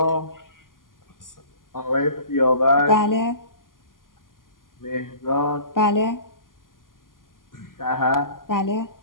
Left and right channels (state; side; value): late; right; 0.90 ms